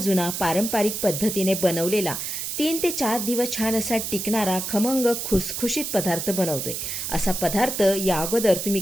पारंपरिक पद्धतीने बनवलेला 3 ते 4 दिवस छान असा टिकणारा खमंग खुसखुशीत पदार्थ बनवतोय. असा पदार्थ या अगोदर तुम्ही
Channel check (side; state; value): right; noise; hiss, 4 dB below the sound